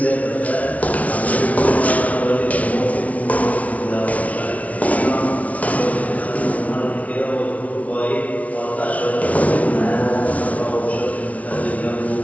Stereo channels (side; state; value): right; late; 0.068 ms